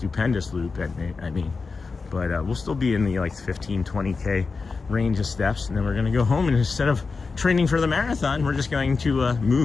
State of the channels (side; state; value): right; quieter; 4.5 dB